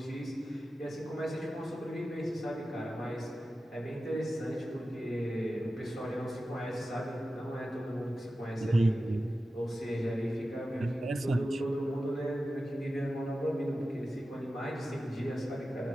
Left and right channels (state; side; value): normal; both; correlation 0.93